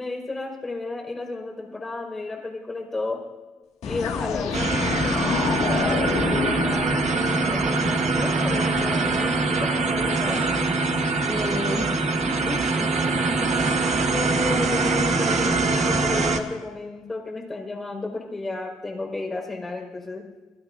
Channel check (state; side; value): normal; both; correlation 0.60